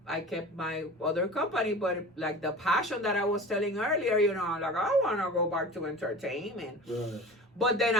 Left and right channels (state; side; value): normal; both; correlation 0.37